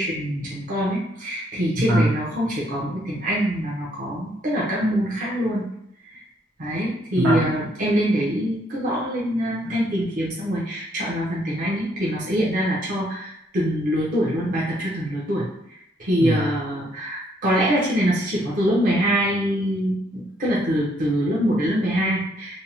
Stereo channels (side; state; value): both; normal; correlation 0.70